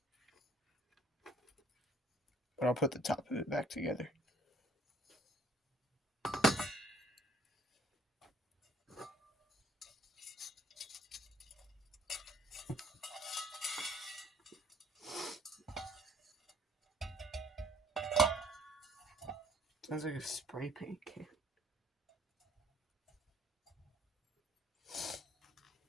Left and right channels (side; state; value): both; normal; correlation 0.59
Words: But I'll put the top of it back together. Sounds like a spray paint can.